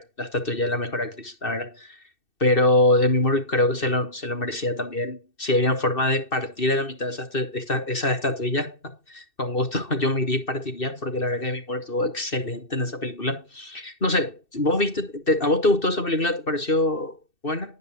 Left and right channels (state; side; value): late; right; 2.6 ms